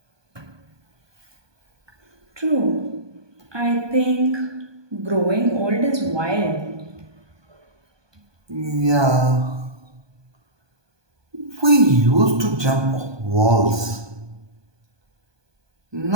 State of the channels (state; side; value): late; left; 1.2 ms